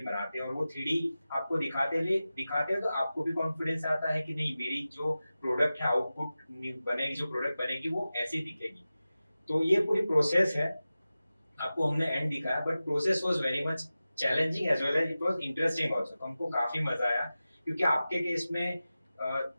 बनाते हैं, और वो 3D आपको दिखाते हैं तो आपको भी कॉन्फिडेंस आता है कि नहीं, मेरी जो प्रोडक्ट है, आउटपुट बनेगी, जो प्रोडक्ट बनेगी वो ऐसी दिखेगी। तो ये पूरी प्रोसेस है, आपको हमने एंड दिखाया, but process was very much challenging as well as it was interesting also. तो हमको काफी मजा आया, क्योंकि आपके केस में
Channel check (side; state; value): both; inverted; correlation -0.95